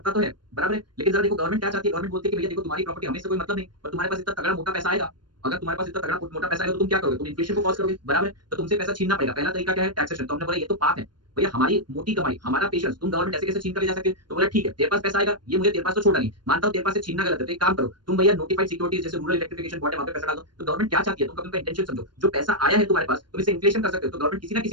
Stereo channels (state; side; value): late; left; 0.71 ms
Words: तो है बराबर है, लेकिन जरा देखो गवर्नमेंट क्या चाहती है, गवर्नमेंट बोलती है कि भैया देखो तुम्हारी प्रॉपर्टी हमें से कोई मतलब नहीं, पर तुम्हारे पास इतना तगड़ा मोटा पैसा आएगा, अगर तुम्हारे पास इतना तगड़ा मोटा पैसा आएगा तो तुम क्या करोगे, तुम इन्फ्लेशन को कॉज करोगे बराबर है, तो तुमसे पैसा छीनना पड़ेगा। पहला तरीका क्या है, टैक्सेशन। तो हमने बोला ये तो पाप है भैया, हमारी मोटी कमाई, हमारा पेशेंस तुम गवर्नमेंट ऐसे कैसे छीन कर ले जा सकते हो। तो बोला ठीक है तेरे पास पैसा आएगा, ये मुझे तेरे पास तो छोड़ा नहीं, मानता हूं तेरे पास से छीनना गलत है, तो एक काम करो तुम भैया नोटिफाइड सिक्योरिटीज जैसे रूरल इलेक्ट्रिफिकेशन बोर्ड है वहां पे पैसा डाल दो। तो गवर्नमेंट क्या चाहती है, तुम कभी उनका इंटेंशन समझो, जो पैसा आया है तुम्हारे पास तुम इसे इन्फ्लेशन कर सकते हो, तो गवर्नमेंट किसी ना